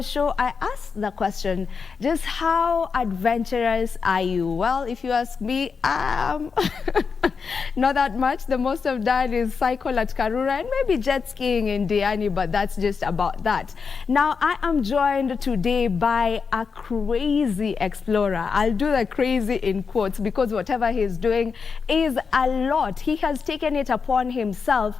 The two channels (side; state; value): right; quieter; 5.5 dB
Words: show, I asked the question, just how adventurous are you? Well, if you ask me, not that much. The most I've done is cycle at Karura and maybe jet skiing in Diani, but that's just about that. Now, I am joined today by a crazy explorer. I'll do the crazy in quotes because whatever he's doing is a lot. He has taken it upon himself